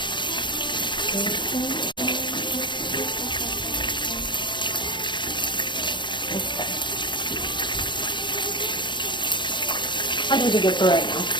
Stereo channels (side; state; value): right; late; 0.23 ms